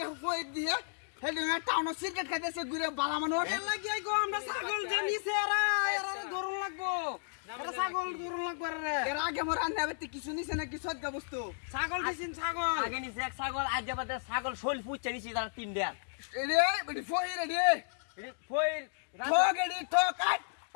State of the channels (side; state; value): right; silent; digital silence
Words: হয়ে দিয়ে হে দুঙ্গা টাউন সিগারেট খাইতেছে ঘুরে বালা মানুষ এর লাগি গো আমরা ছাগল যে নিছে এরা ধরন লাগবো ছাগল দৌড় লাগবে রে এর আগে মোর রান্না করতে কিছু নিছে না কিছু আজকে বস্তু ছাগল দিছেন ছাগল আগে নিচে এক ছাগল আজ যাবাতে ছাগল শোল পুচ্ছে নিছি তারা 3 দেয়া রে বডি ফই রে ফইর ঠক এডি ঠক আট